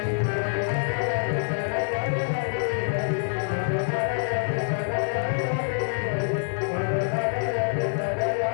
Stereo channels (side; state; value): right; silent; digital silence